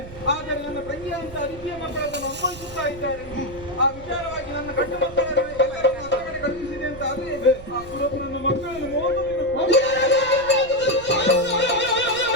ಆದರೆ ನನ್ನ ತಂಗಿಯ ಅಂತ ಅದಿತಿಯ ಮಕ್ಕಳನ್ನು ಅನುಭವಿಸುತ್ತಾ ಇದ್ದಾರೆ. ಆ ವಿಚಾರವಾಗಿ ನನ್ನ ಗಂಡು ಮಕ್ಕಳನ್ನು ಕಡೆ ಕಳುಹಿಸಿದೆ ಅಂತ ಆದ್ರೆ ಆ ಸುರಪ ನನ್ನ ಮಕ್ಕಳನ್ನು ಮೋಸ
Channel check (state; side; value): noise; right; rumble, 16 dB below the sound